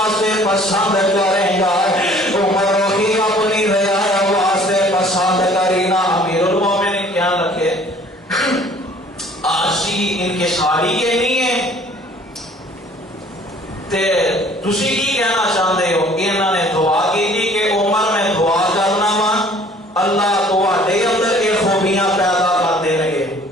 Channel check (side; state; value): both; normal; correlation 0.54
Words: پسند کرے گا عمر ہی اپنی رعایا واسطے پسند کری نا امیر المومنین کیا لکھے آسی ان کے ساری یہ نہیں ہے تے تسی کی کہنا چاہتے ہو انہوں نے دعا کی تھی کہ عمر میں دعا کرنا وا اللہ تواڈے اندر یہ خوبیاں پیدا کر دے رہے